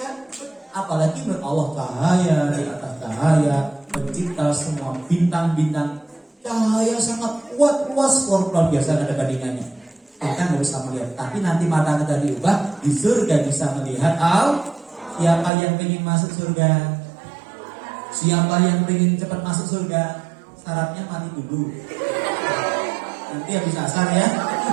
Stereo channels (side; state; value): left; drops out; at 15.5 s